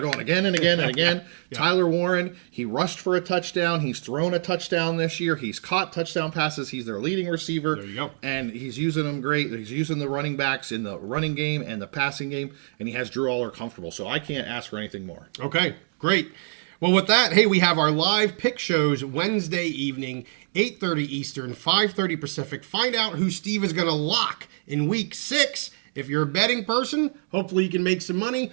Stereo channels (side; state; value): left; silent; digital silence